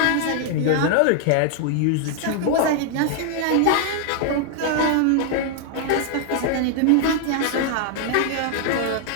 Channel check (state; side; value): different; both; correlation 0.00